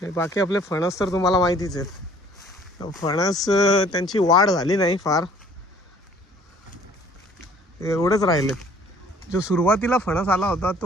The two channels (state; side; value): normal; both; correlation 0.55